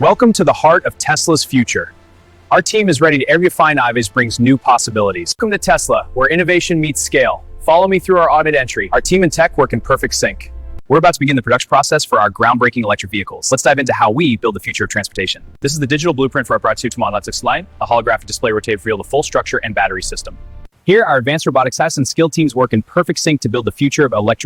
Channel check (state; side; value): identical; both; correlation 1.00